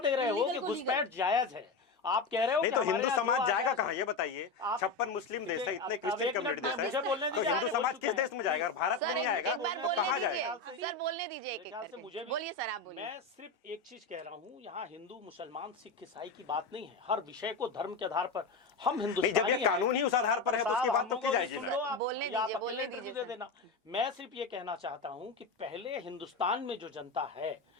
रहे हो Illegal कि को घुसपैठ जायज है। आप कह रहे हो नहीं कि तो हमारे हिंदू यहाँ जो समाज आ जाएगा जाए- कहाँ ये बताइए? आप- 56 मुस्लिम देश है, देखिए, इतने अब क्रिश्चियन एक मिनट कम्युनिटी में देश मुझे है, बोलने तो दीजिए, हिंदू आगे बोल समाज चुके किस हैं। देश में जाएगा? भारत सर में नहीं आएगा। एक बार तो बोलने कहाँ दीजिए जाएगा? सर, बोलने दीजिए एक एक मेरे ख्याल से करके मुझे भी- बोलिए सर, आप बोलिए। मैं सिर्फ एक चीज कह रहा हूँ, यहाँ हिंदू मुसलमान सिख ईसाई की बात नहीं है। हर विषय को धर्म के आधार पर हम नहीं, जब हिंदुस्तानी ये हैं। कानून ही उस आधार पर है तो उसकी साहब, बात तो हम की लोगों जाएगी को सुन ना। लो आप, बोलने या आप दीजिए, अकेले बोलने इंटरव्यू दीजिए दे सर। देना। मैं सिर्फ ये कहना चाहता हूँ कि पहले हिंदुस्तान में जो जनता है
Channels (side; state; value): right; quieter; 3.9 dB